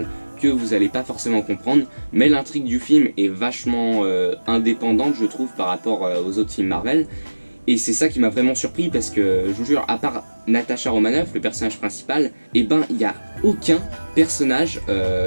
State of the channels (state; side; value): inverted; both; correlation -1.00